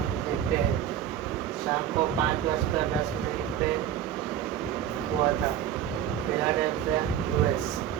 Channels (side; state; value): left; quieter; 10.2 dB